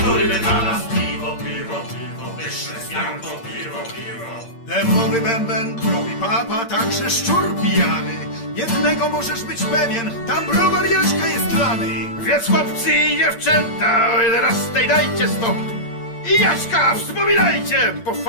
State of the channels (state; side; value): late; right; 8.7 ms